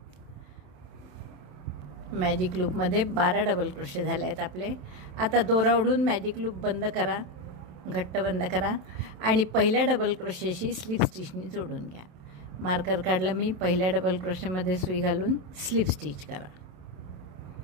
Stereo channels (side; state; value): left; late; 27 ms